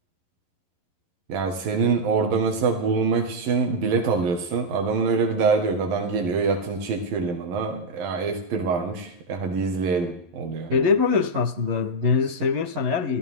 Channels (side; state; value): left; late; 11 ms